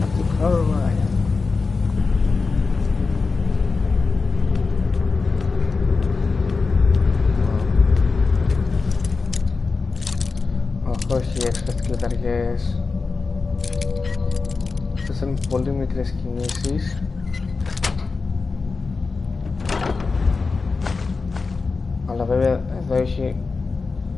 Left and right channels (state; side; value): quieter; right; 4.3 dB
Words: Όχι, έξπερτ κλειδαριές. Αυτές είναι πολύ μικρές κινήσεις. Αλλά βέβαια εδώ έχει